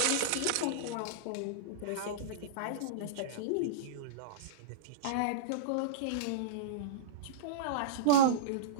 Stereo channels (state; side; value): different; both; correlation -0.04